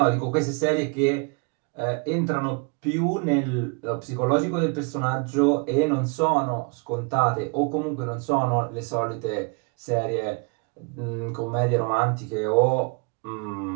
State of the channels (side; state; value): left; quieter; 33.2 dB